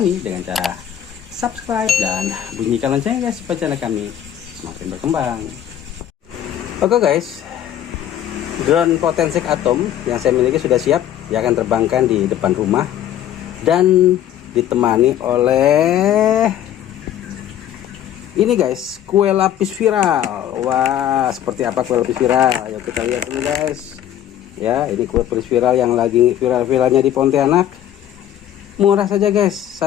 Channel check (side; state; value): right; quieter; 10.9 dB